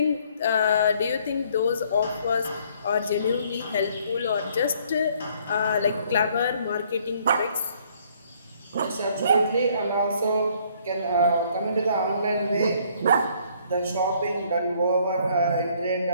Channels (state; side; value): inverted; both; correlation -0.63